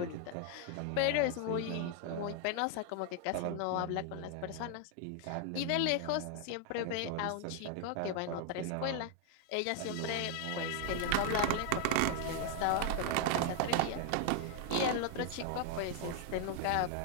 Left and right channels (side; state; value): both; different; correlation 0.00